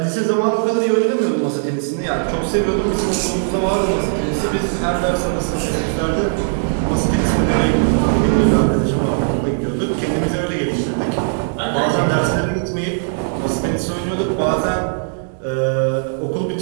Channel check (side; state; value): left; silent; 67 dB below the other